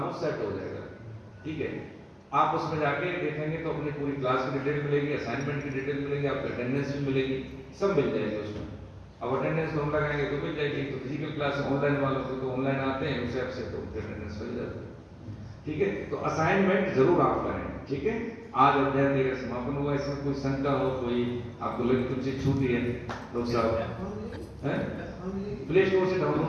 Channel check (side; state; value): both; identical; correlation 1.00